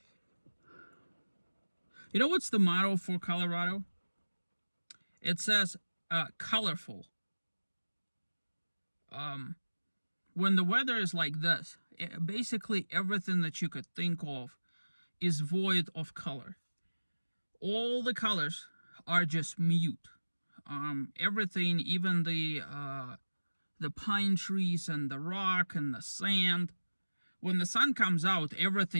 You know what's the motto for Colorado? It says, colorful. When the weather is like this, basically everything that you could think of is void of color. All the colors are just mute. Everything, even the pine trees and the rock and the sand. When the sun comes out,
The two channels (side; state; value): both; inverted; correlation -1.00